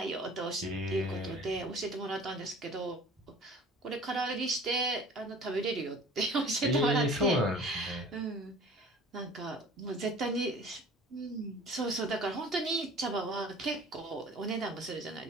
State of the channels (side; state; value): both; normal; correlation 0.46